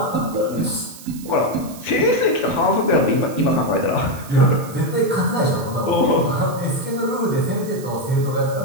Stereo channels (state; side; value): noise; right; hiss, 18 dB below the sound